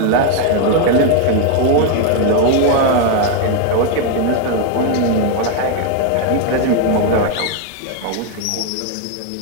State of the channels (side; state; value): both; different; correlation 0.01